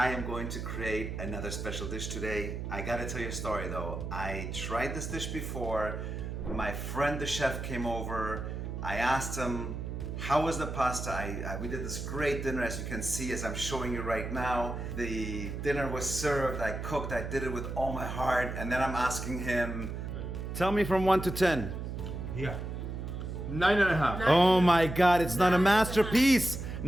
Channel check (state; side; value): noise; right; hum, 5 dB below the sound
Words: am going to create another special dish today. I gotta tell you a story though. I tried this dish before. My friend the chef came over. I asked him, how was the pasta? We did this great dinner, as you can see, as I'm showing you right now. The dinner was served, I cooked, I did it with all my heart, and then I'm asking him, tell me from 1 to 10. Yeah. 9.5. Oh my God, it's not a masterpiece.